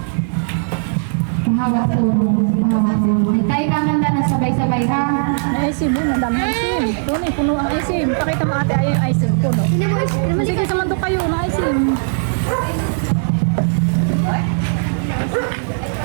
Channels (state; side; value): silent; left; digital silence